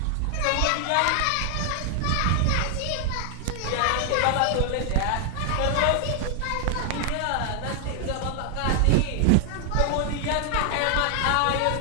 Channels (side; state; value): both; different; correlation 0.00